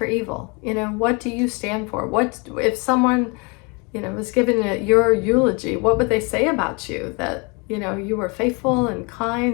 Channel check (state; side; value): quieter; right; 30.8 dB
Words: evil. What do you stand for? What if someone, was giving your eulogy, what would they say about you? That you were faithful and